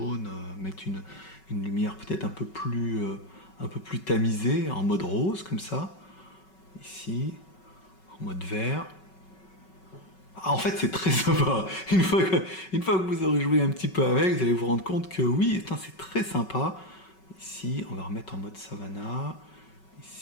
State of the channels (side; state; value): right; late; 5.3 ms